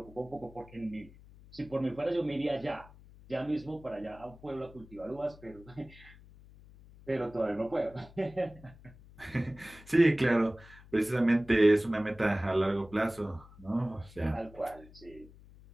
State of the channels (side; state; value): left; noise; hum, 21 dB below the sound